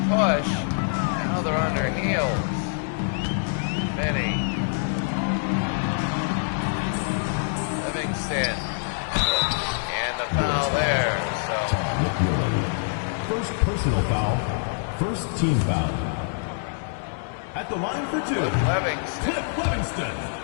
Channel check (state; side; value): silent; right; digital silence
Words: push. Now they're on their heels. Benny. Livingston. And the foul there. So McMillan. First personal foul. First team foul. At the line for 2. Cliff Livingston. Cliff Livingston.